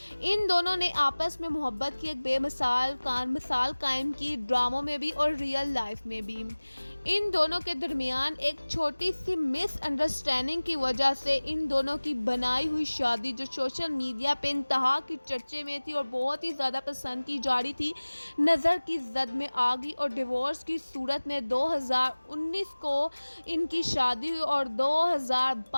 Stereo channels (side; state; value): both; inverted; correlation -1.00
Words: इन दोनों ने आपस में मोहब्बत की एक बेमिसाल मिसाल कायम की, ड्रामों में भी और रियल लाइफ में भी। इन दोनों के दरमियान एक छोटी सी मिसअंडरस्टैंडिंग की वजह से इन दोनों की बनाई हुई शादी, जो सोशल मीडिया पे इंतहा की चर्चे में थी और बहुत ही ज़्यादा पसंद की जा रही थी, नज़र की जद में आ गई और डिवोर्स की सूरत में 2019 को इनकी शादी हुई और